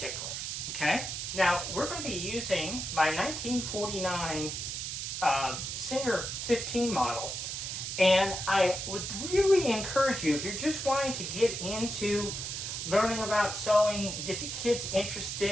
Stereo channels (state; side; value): noise; right; hiss, 4 dB below the sound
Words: Okay, now we're going to be using my 1949 Singer 15 model, and I would really encourage you, if you're just wanting to get into learning about sewing, get the kids